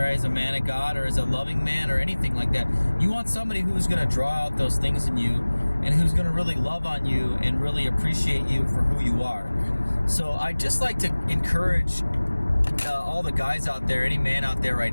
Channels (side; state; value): both; inverted; correlation -1.00